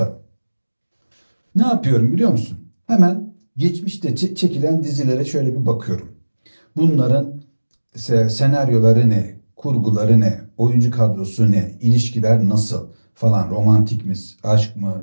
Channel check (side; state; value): both; inverted; correlation -1.00